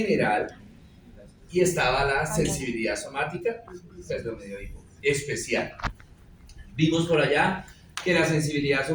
y estaba la sensibilidad somática, perdón, me dio hipo, especial. Vimos por allá que la sensibilidad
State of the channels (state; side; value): identical; both; correlation 1.00